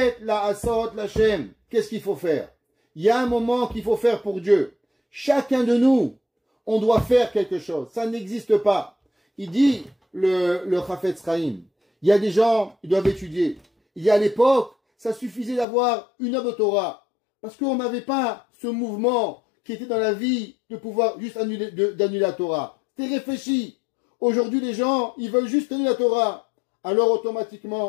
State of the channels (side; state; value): right; drops out; at 15.7 s